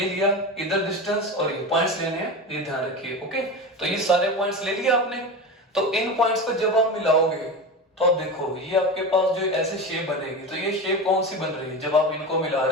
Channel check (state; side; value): normal; both; correlation 0.25